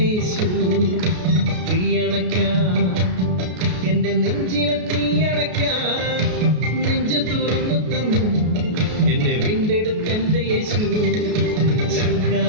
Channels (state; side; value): late; left; 33 ms